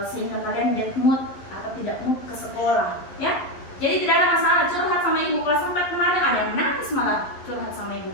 sehingga kalian bad mood atau tidak mood ke sekolah, ya. Jadi tidak ada masalah curhat sama ibu. Kelas 4 kemarin ada yang nangis malah curhat sama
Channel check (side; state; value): right; late; 11 ms